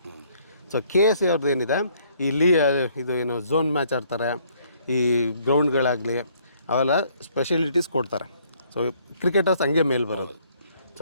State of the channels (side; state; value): both; inverted; correlation -0.64